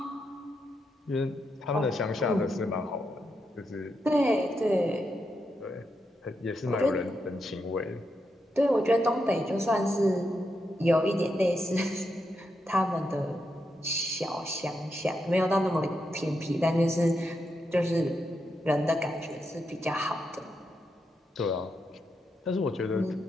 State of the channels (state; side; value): normal; both; correlation 0.84